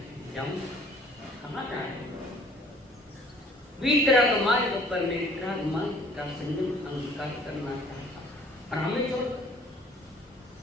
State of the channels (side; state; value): both; normal; correlation 0.54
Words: जाऊँ। कहाँ जा रहे हो? वितराग मार्ग पर मैं वितराग मार्ग का संयम अंगीकार करना चाहता हूँ और हमें छोड़